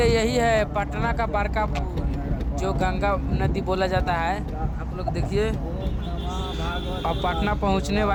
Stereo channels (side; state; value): both; identical; correlation 1.00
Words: यही है पटना का बड़का पुल जो गंगा नदी बोला जाता है। आप लोग देखिए, अब पटना पहुंचने